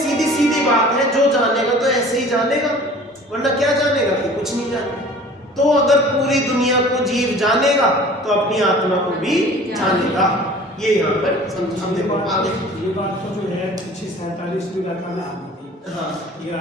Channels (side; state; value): both; normal; correlation 0.46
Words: बात है, जो जानेगा तो ऐसे ही जानेगा, वरना क्या जानेगा कि कुछ नहीं जानेगा। तो अगर पूरी दुनिया को जीव जानेगा तो अपनी आत्मा को भी जानेगा। ये यहाँ पर समझ, देखो आगे ये बात तो जो है 47वीं गाथा में आनी थी। हाँ, ये